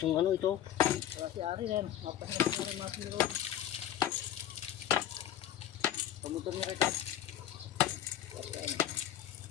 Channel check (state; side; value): quieter; right; 11.4 dB